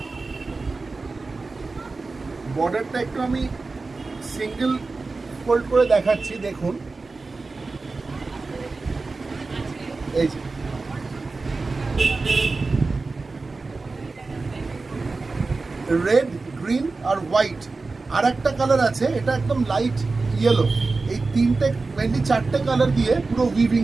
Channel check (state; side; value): quieter; left; 3.8 dB